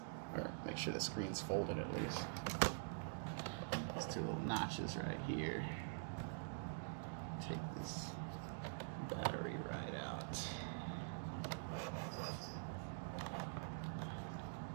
or make sure the screen's folded at least. These two little notches right here. Take this battery right out.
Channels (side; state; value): left; silent; digital silence